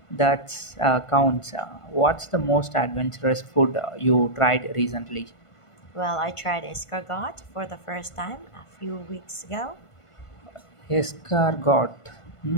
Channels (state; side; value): late; right; 1.5 ms